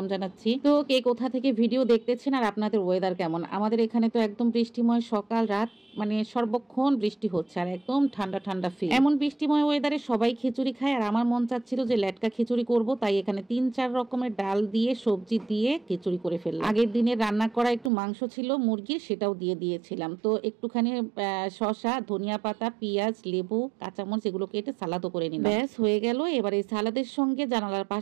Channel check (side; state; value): left; drops out; at 17.9 s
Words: জানাচ্ছি। তো কে কোথা থেকে ভিডিও দেখতেছেন আর আপনাদের ওয়েদার কেমন? আমাদের এখানে তো একদম বৃষ্টিময় সকাল রাত, মানে সর্বক্ষণ বৃষ্টি হচ্ছে আর একদম ঠান্ডা ঠান্ডা ফিল। এমন বৃষ্টিময় ওয়েদারে সবাই খিচুড়ি খায় আর আমার মন চাচ্ছিল যে লেটকা খিচুড়ি করব, তাই এখানে 3-4 রকমের ডাল দিয়ে সবজি দিয়ে খিচুড়ি করে ফেললাম। আগের দিনে রান্না করা একটু মাংস ছিল মুরগির, সেটাও দিয়ে দিয়েছিলাম। তো একটুখানি শসা, ধনিয়া পাতা, পেঁয়াজ, লেবু, কাঁচামরিচ এগুলো কেটে সালাদও করে নিলাম। ব্যাস হয়ে গেল। এবার এই সালাদের সঙ্গে জানালার